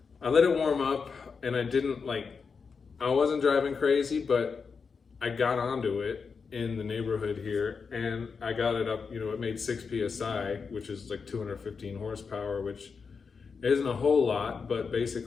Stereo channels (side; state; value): right; quieter; 5.4 dB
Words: let it warm up and I wasn't driving crazy, but I got onto it in the neighborhood here and I got it up, it made 6 PSI, which is like 215 horsepower, which isn't a whole lot, but